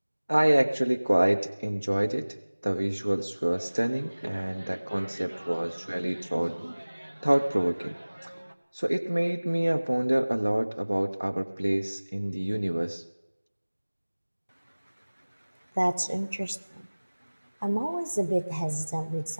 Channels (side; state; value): both; inverted; correlation -1.00